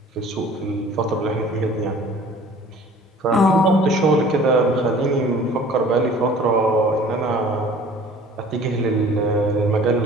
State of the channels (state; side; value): normal; both; correlation 0.49